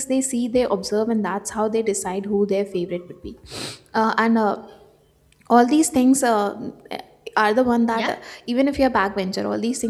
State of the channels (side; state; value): both; identical; correlation 1.00